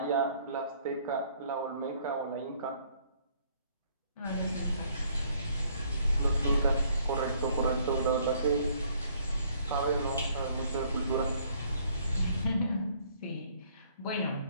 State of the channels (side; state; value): both; inverted; correlation -0.63